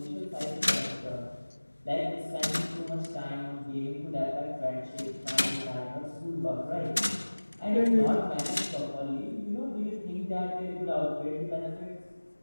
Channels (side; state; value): both; inverted; correlation -1.00